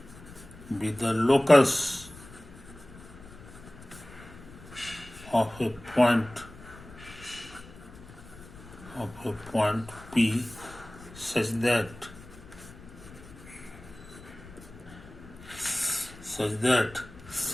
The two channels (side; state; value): left; noise; rumble, 18 dB below the sound